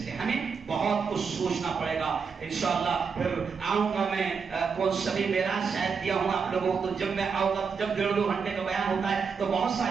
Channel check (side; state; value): left; quieter; 5.7 dB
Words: ہمیں بہت کچھ سوچنا پڑے گا۔ انشاءاللہ پھر آؤں گا میں، کون سبھی معراج شاید دیا ہوں آپ لوگوں کو، تو جب میں آؤں گا، جب 1.5-2 گھنٹے کا بیان ہوتا ہے تو بہت